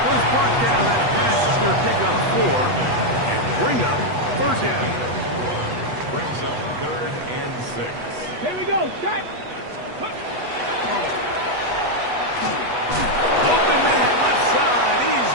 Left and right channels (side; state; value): left; late; 8.2 ms